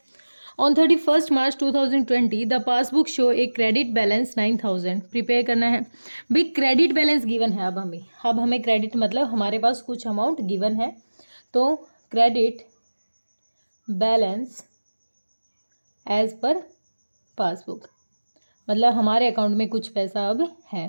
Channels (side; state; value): both; inverted; correlation -1.00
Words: On 31 March 2020 the passbook show a credit balance 9000। Prepare करना है भाई, क्रेडिट बैलेंस गिवन है। अब हमें क्रेडिट मतलब हमारे पास कुछ अमाउंट गिवन है, तो credit balance as per passbook मतलब हमारे अकाउंट में कुछ पैसा अब है